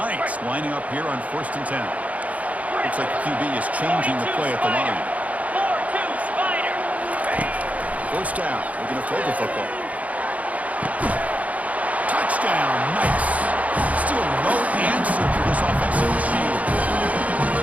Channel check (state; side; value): late; left; 0.069 ms